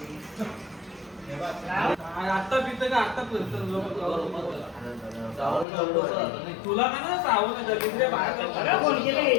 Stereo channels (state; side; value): drops out; right; at 5.7 s